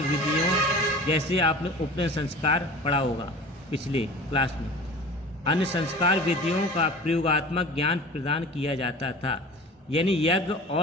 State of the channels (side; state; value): both; normal; correlation 0.39